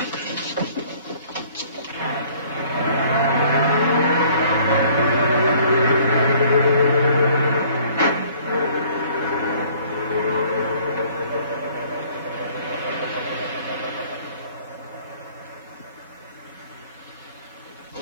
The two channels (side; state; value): both; inverted; correlation -0.56